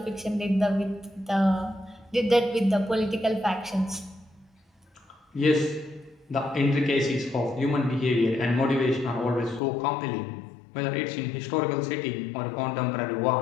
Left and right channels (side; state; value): right; drops out; at 9.6 s